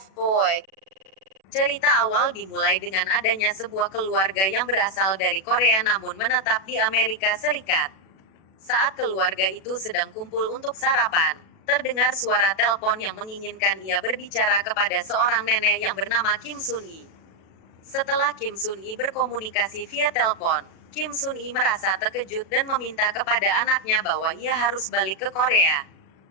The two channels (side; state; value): right; late; 37 ms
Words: Boy. Cerita awal dimulai dengan adanya sebuah keluarga yang berasal dari Korea namun menetap di Amerika Serikat. Saat keluarga itu sedang kumpul untuk sarapan, terdengar suara telepon yang menginginkan ia berbicara kepada seorang nenek yang bernama Kim Sun-i. Setelah Kim Sun-i berkomunikasi via telepon, Kim Sun-i merasa terkejut dan meminta kepada anaknya bahwa ia harus balik ke Korea.